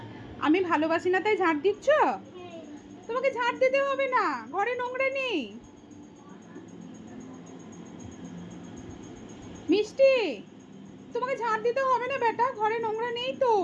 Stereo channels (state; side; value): identical; both; correlation 1.00